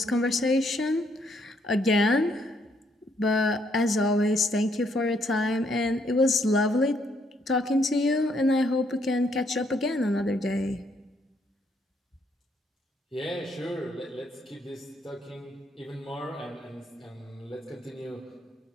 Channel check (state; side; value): normal; both; correlation 0.71